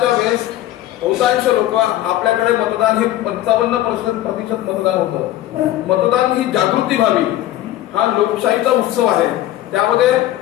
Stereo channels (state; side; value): quieter; right; 14.1 dB